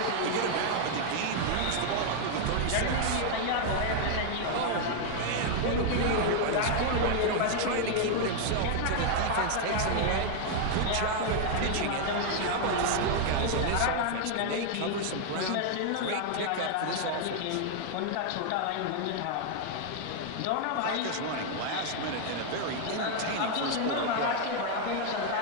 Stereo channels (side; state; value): both; different; correlation 0.00